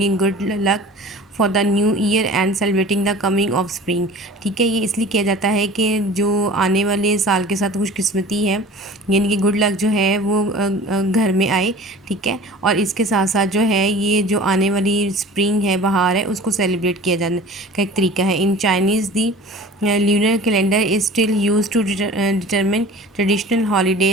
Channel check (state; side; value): normal; both; correlation 0.41